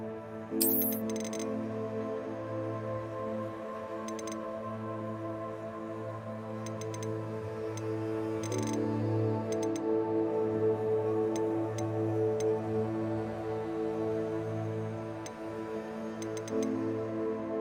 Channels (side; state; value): both; identical; correlation 1.00